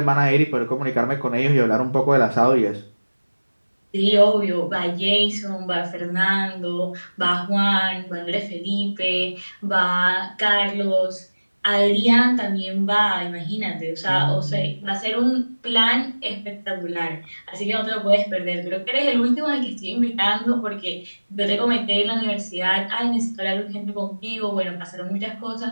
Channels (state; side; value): inverted; both; correlation -1.00